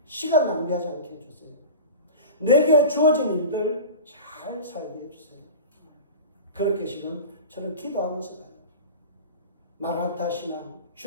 시간 낭비하지 않게 해주세요. 내게 주어진 일들 잘 살게 해주세요. 그렇게 지금 저는 기도하면서 가요. 마라나타 신앙,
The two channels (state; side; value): inverted; both; correlation -0.32